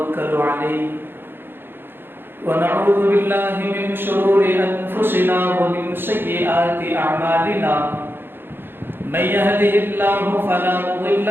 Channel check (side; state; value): left; late; 0.10 ms